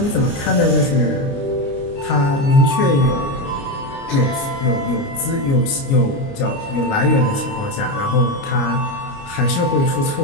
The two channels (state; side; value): late; right; 29 ms